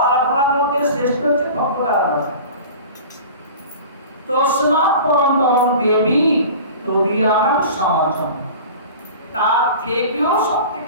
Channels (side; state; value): both; inverted; correlation -0.38